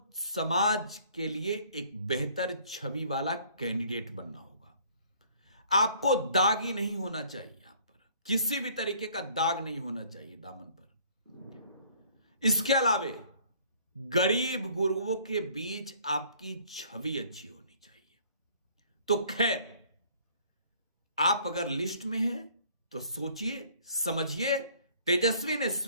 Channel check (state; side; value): inverted; both; correlation -0.57